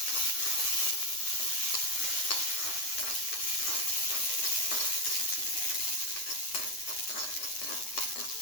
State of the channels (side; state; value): right; late; 9.5 ms